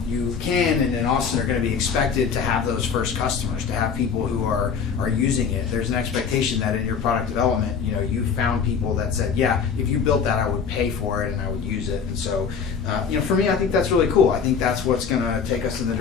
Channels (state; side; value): quieter; right; 6.3 dB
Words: and in Austin are going to be expected to have those first customers, to have people who are using it. There's an expectation that in your product development, you found people that said, yeah, if you built that, I would pay for it and I would use it. And so, for me, I think that's really cool. I think that's what's going to take us in the